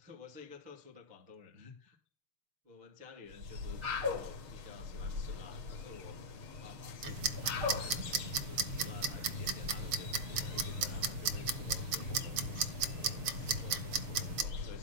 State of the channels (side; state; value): left; late; 6.7 ms